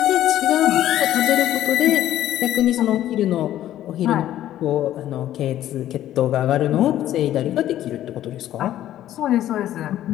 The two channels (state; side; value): quieter; right; 12.7 dB